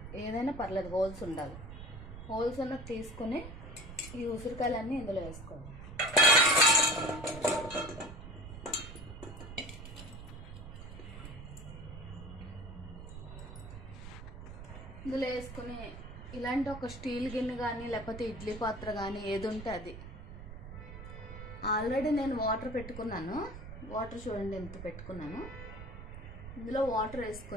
ఏదైనా పర్లేదు, హోల్స్ ఉండాలి. హోల్స్ ఉన్నది తీసుకుని ఈ ఉసిరికాయలన్నీ ఇందులో వేసుకోవాలి. ఇందులో వేసుకుని ఇలాంటి ఒక స్టీల్ గిన్నె కానీ లేకపోతే ఇడ్లీ పాత్ర కానీ ఏది ఉంటే అది. ఆల్రెడీ నేను వాటర్ పెట్టుకున్నాను. వాటర్ చూడండి ఎంత పెట్టుకున్నాను. ఇందులో వాటర్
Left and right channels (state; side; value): noise; right; rumble, 12 dB below the sound